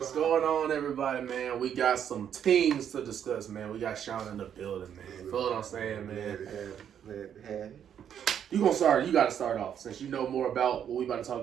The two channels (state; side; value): quieter; left; 9.0 dB